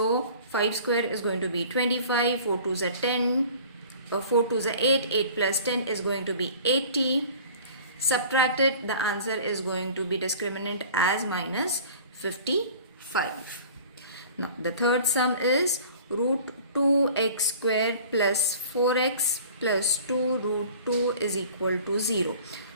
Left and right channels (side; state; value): both; inverted; correlation -0.45